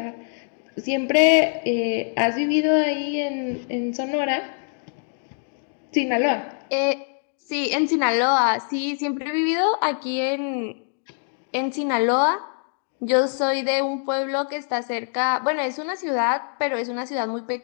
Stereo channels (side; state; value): right; silent; 63 dB below the other